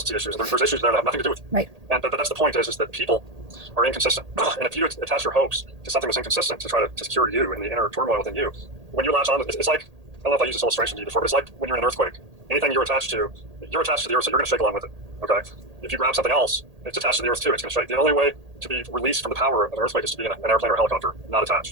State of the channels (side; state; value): left; late; 1.8 ms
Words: issues. There's issues there that have nothing to do with you. Right. And but that's the point is that people are inconsistent. And if you attach your hopes to something that's inconsistent to try to secure you in the inner turmoil within you, when you latch on, it's like, I don't know if I used this illustration to you before, but it's like when you're in an earthquake. Anything you're attached to the earth, so you're going to shake along with it. Okay. If you grab something else, it's attached to the earth too. It's going to shake. The only way to be released from the power of an earthquake is to be in an airplane or a helicopter, not